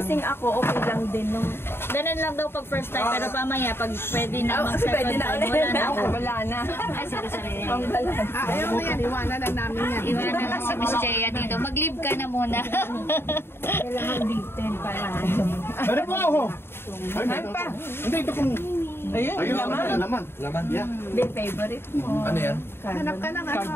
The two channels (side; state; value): right; late; 0.11 ms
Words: ako, okay lang din. Nung Ganun lang daw pag first time, pero pamaya pag pwede na mag-second time, wala na ako. wala na. Ay, sorry. Ayaw mo yan, iwanan lang namin yan. Iwanan lang si Miss Chea dito. Mag-leave ka na muna. Kailangan dito para. Dari po ako. Ay pa. Hindi, ito kung... Ayun, laman. Laman, yeah. Hindi, favorite mo. Ano yan? Hanap ka ng ano,